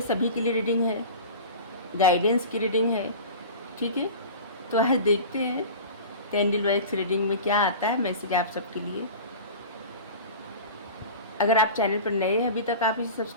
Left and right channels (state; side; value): inverted; both; correlation -0.35